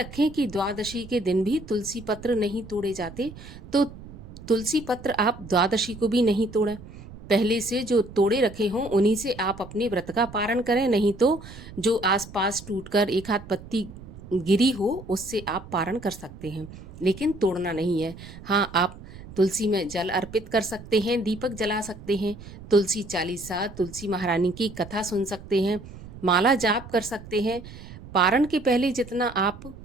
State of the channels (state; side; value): noise; right; rumble, 16 dB below the sound